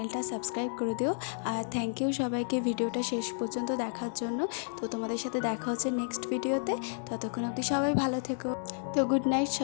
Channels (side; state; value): right; silent; digital silence